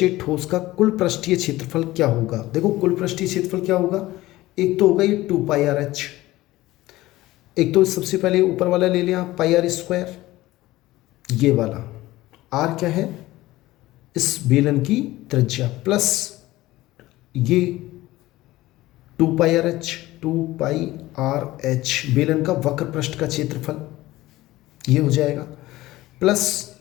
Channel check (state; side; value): quieter; right; 17.5 dB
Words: ठोस का कुल पृष्ठीय क्षेत्रफल क्या होगा। देखो कुल पृष्ठीय क्षेत्रफल क्या होगा, एक तो होगा ये 2πrh, एक तो सबसे पहले ऊपर वाला ले लिया πr², ये वाला r क्या है, इस बेलन की त्रिज्या, प्लस ये 2πrh, 2πrh बेलन का वक्र पृष्ठ का क्षेत्रफल, ये हो जाएगा, प्लस